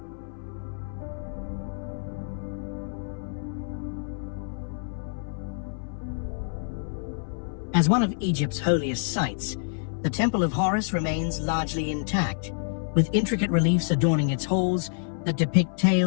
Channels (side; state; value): right; silent; 60 dB below the other